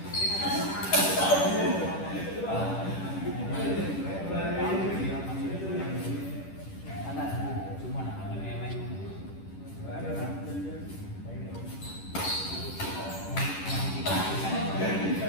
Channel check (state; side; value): late; right; 10 ms